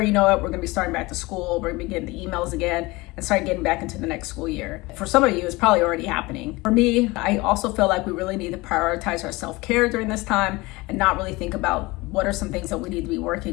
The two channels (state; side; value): quieter; right; 22.4 dB